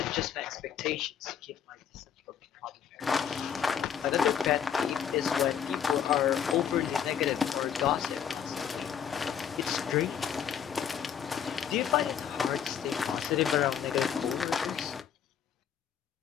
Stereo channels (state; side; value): quieter; right; 8.4 dB